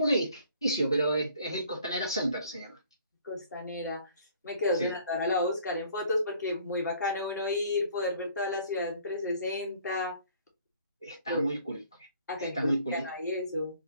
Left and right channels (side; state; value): both; inverted; correlation -0.56